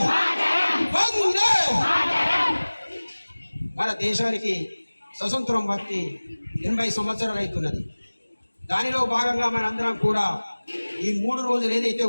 वंदे మన దేశానికి స్వతంత్రం వచ్చి 80 సంవత్సరాలు అవుతున్నది. దానిలో భాగంగా మనందరం కూడా ఈ 3 రోజులు ఏదైతే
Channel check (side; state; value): both; inverted; correlation -1.00